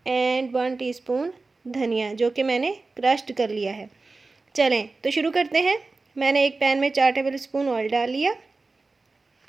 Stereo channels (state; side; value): quieter; left; 3.7 dB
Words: एंड 1 टीस्पून धनिया, जो कि मैंने क्रश्ड कर लिया है। चलें तो शुरू करते हैं। मैंने एक पैन में 4 टेबल स्पून ऑयल डाल लिया